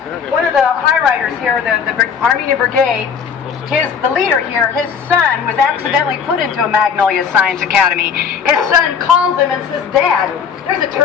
one of the high riders here, the Armenian Brigade, the leader here, his son was accidentally put into a Magnolia Science Academy. His son calls him and says, Dad, there's a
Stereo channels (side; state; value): right; quieter; 6.8 dB